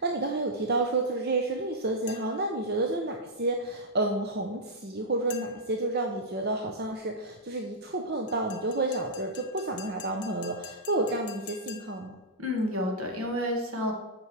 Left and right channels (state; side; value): normal; both; correlation -0.08